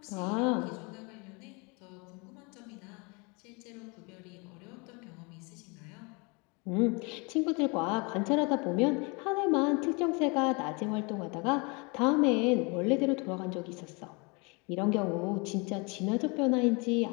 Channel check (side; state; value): right; quieter; 30.3 dB